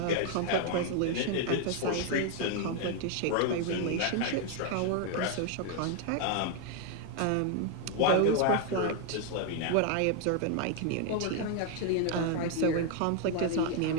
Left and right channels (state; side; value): different; both; correlation 0.00